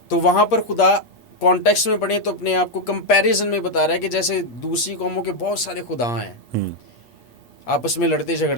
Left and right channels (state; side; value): late; right; 8.5 ms